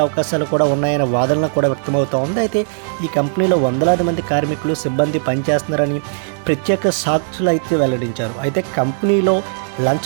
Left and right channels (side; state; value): left; silent; digital silence